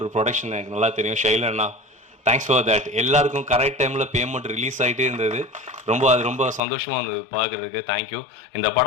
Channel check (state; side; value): drops out; right; at 6.6 s